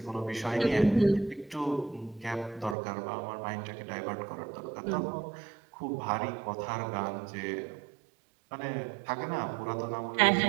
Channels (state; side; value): drops out; left; at 2.8 s